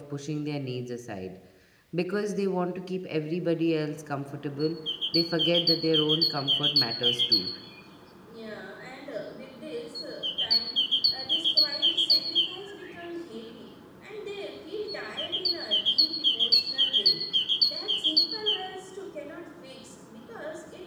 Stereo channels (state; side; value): identical; both; correlation 1.00